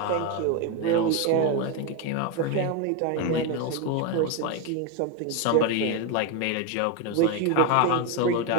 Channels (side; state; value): both; different; correlation 0.02